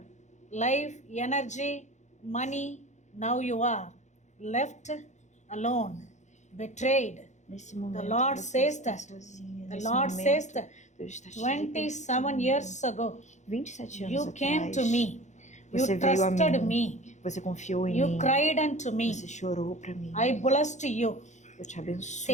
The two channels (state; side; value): late; right; 0.34 ms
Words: life, energy, money. Now you are left alone, betrayed. Nesse momento, The Lord você says está that. sozinha. The Nesse Lord momento, says that Deus está te 27 years ago, 27 anos you came atrás, to me. You você veio a trusted mim. me. Você confiou em You mim. cried unto me. Você chorou para mim. I blessed you. Eu te abençoo.